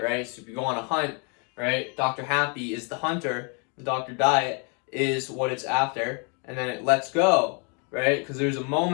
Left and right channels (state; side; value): quieter; right; 35.9 dB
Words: right? So if you go on a hunt, right? Dr. Happy is the hunter, and Dr. Diet is what it's after, and then it lets go, right? Because there's a